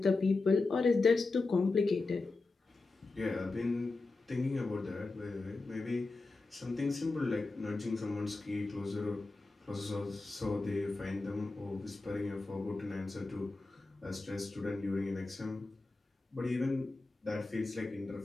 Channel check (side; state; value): right; quieter; 3.5 dB